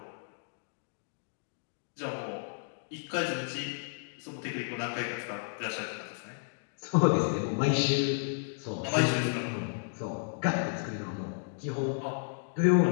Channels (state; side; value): silent; right; digital silence